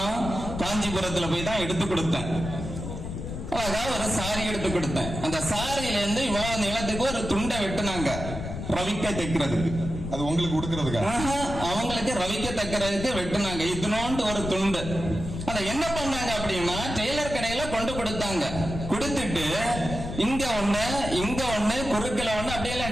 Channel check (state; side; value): noise; left; rumble, 7 dB below the sound